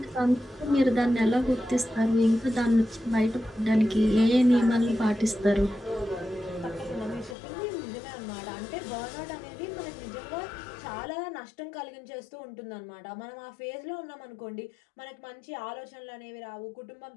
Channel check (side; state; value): right; drops out; at 7.4 s